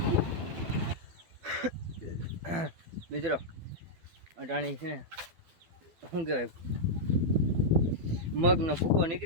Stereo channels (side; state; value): left; late; 12 ms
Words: મિત્રો અટાણી છે ને શું કહેવાય, મગનો ભૂકો